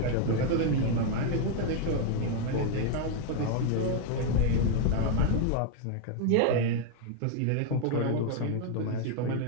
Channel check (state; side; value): different; both; correlation 0.00